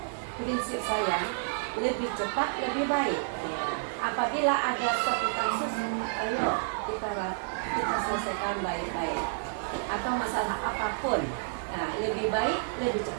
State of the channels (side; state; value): left; silent; digital silence